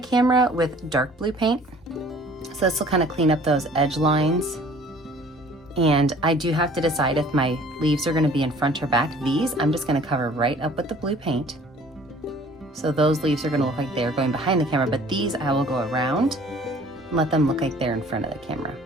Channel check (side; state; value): both; normal; correlation 0.52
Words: with dark blue paint, so this will kind of clean up those edge lines. And I do have to decide if my leaves are going to be in front or back. These I'm just going to cover right up with the blue paint, so those leaves are going to look like they're going behind the camera, but these I will go around and let them look like they're in front of the camera.